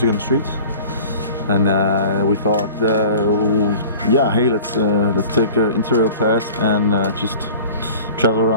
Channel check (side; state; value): both; inverted; correlation -0.43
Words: on the streets, and we thought, yeah, hey, let's take an Interrail pass and just travel